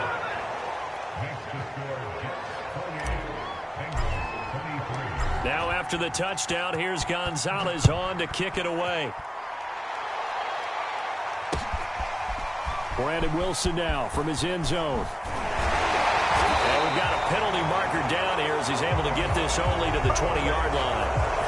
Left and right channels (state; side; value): identical; both; correlation 1.00